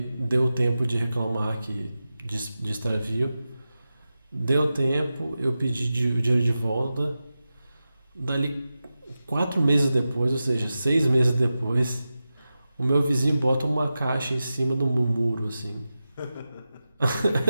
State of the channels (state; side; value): inverted; both; correlation -0.93